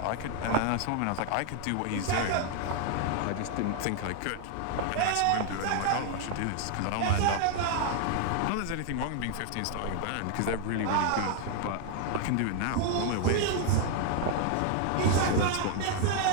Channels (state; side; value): different; both; correlation 0.00